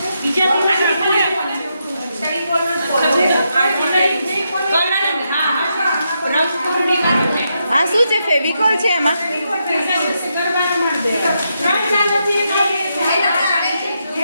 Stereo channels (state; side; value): inverted; both; correlation -0.82